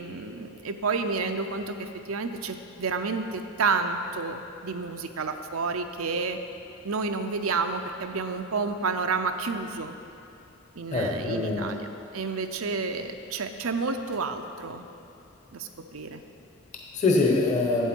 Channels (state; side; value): normal; both; correlation 0.18